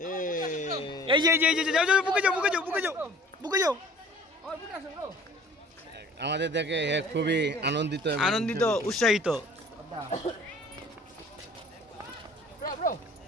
এই যে যাও বুকে যাও। আমাদের দেখে খুবই আনন্দিত উৎসাহিত।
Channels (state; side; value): normal; both; correlation 0.49